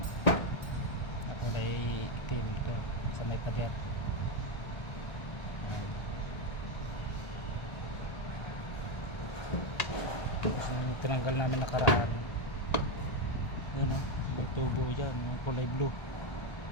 Ako ay itim ito sa may pader. Yan. Yung tinanggal namin nakaraan, yun o, may tubo dyan, may kulay blue.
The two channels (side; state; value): right; late; 1.4 ms